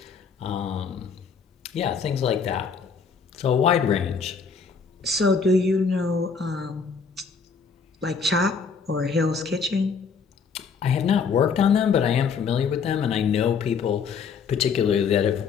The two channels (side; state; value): right; quieter; 5.7 dB